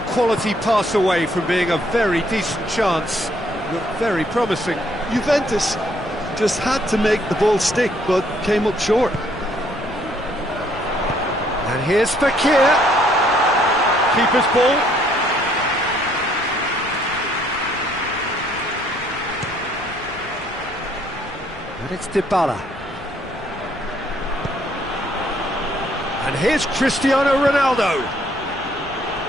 quality pass away from being a very decent chance. Looked very promising. Juventus just had to make the ball stick, but came up short. And here's Fekir. Keeper's ball. And it's Dybala. And here's Cristiano Ronaldo.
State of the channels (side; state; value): left; noise; rumble, 18 dB below the sound